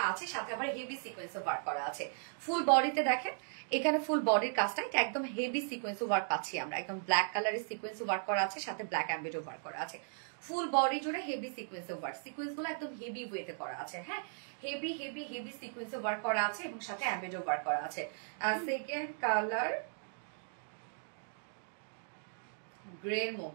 আছে, সাথে আবার হেভি সিকোয়েন্সে ওয়ার্ক করা আছে। ফুল বডিতে দেখেন এখানে ফুল বডির কাজটা এটা একদম হেভি সিকোয়েন্সে ওয়ার্ক পাচ্ছি আমরা, একদম ব্ল্যাক কালারের সিকোয়েন্সে ওয়ার্ক করা আছে, সাথে ব্ল্যাক অ্যাম্বিডো ওয়ার্ক করা আছে। ফুল বডি জুড়ে হেভি সিকোয়েন্সে ওয়ার্ক, সিকোয়েন্স গুলো একদম হেভি ওয়েতে করা আছে, হ্যাঁ হেভি হেভি হেভি সিকোয়েন্সে ওয়ার্ক করা আছে এবং সাথে অ্যাম্বিডো ওয়ার্ক করা আছে। সেকেন্ড কালার গ্রে এর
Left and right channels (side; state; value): left; silent; digital silence